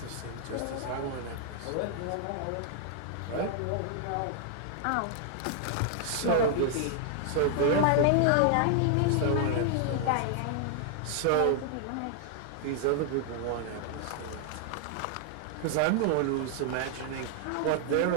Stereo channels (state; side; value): different; both; correlation 0.00